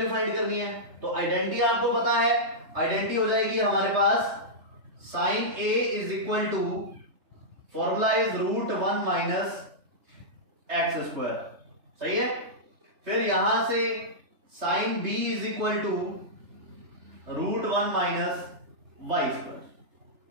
फाइंड करनी है। तो आइडेंटिटी आपको पता है, आइडेंटिटी हो जाएगी हमारे पास sin a is equal to, formula is √1 minus x square, सही है। फिर यहां से sin b is equal to √1 minus y square.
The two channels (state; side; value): late; left; 3.3 ms